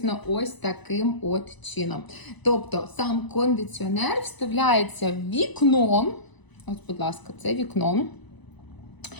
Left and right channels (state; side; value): late; right; 1.0 ms